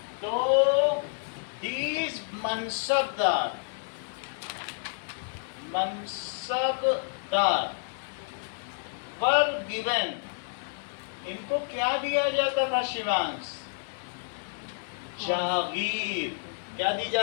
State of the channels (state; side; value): silent; right; digital silence